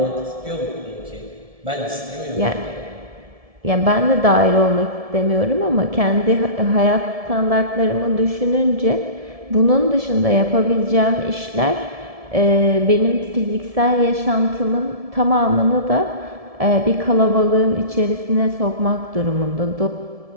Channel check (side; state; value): left; late; 1.7 ms